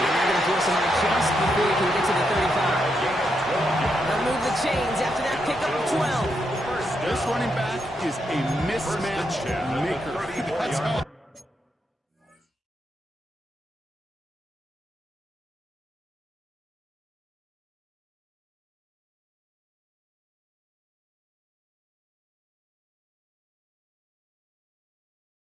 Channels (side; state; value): both; normal; correlation 0.81